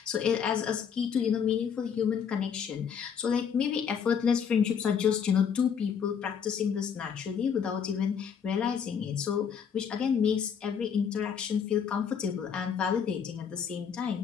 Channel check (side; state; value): right; quieter; 7.3 dB